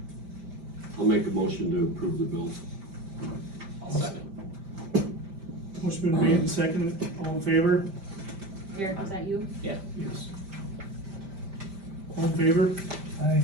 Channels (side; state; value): left; late; 5.1 ms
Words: I'll make a motion to approve the bills. Motion been made and seconded, all in favor? Eric, is that you? Yeah. Yes. All in favor? Aye.